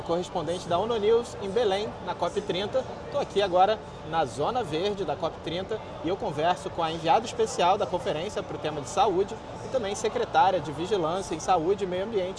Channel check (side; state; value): both; identical; correlation 1.00